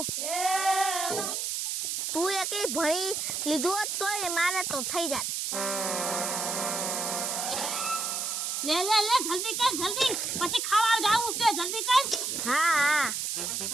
તું એકલી ભણી લીધું હોત તોય મારે તો થઈ જાત. લે જલ્દી કર જલ્દી, પછી ખાવા જાવું છે, જલ્દી કર. હા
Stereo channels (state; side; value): noise; right; hiss, 1 dB below the sound